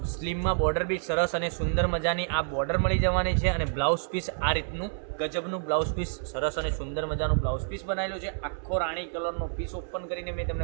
સ્લીમમાં બોર્ડર બી સરસ અને સુંદર મજાની આ બોર્ડર મળી જવાની છે। અને બ્લાઉઝ પીસ આ રીતનું ગજબનું બ્લાઉઝ પીસ, સરસ અને સુંદર મજાનું બ્લાઉઝ પીસ બનાવેલું છે। આખો રાણી કલરનો પીસ ઓપન કરીને મેં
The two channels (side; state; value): left; silent; 59 dB below the other